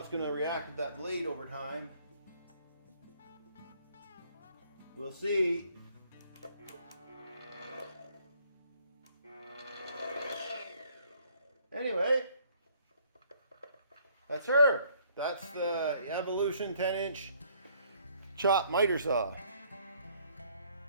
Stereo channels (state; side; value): inverted; both; correlation -0.63